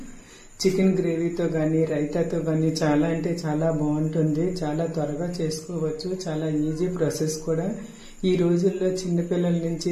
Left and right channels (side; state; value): both; identical; correlation 1.00